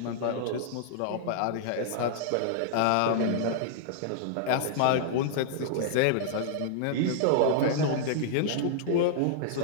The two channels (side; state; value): both; different; correlation -0.01